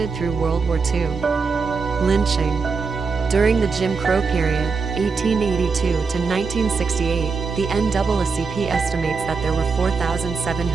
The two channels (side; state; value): left; quieter; 4.9 dB